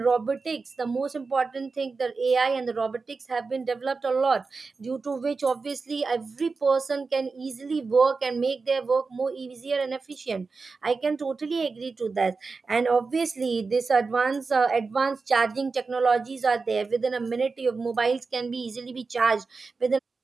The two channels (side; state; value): left; quieter; 4.3 dB